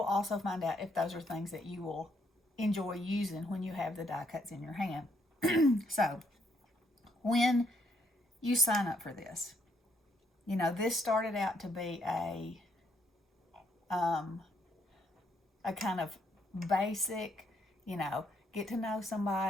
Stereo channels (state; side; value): normal; both; correlation 0.72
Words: also find out if those are things that you will enjoy using when you have the die cuts in your hand. So, when you sign up for this, this started out to be a kind of basic, get to know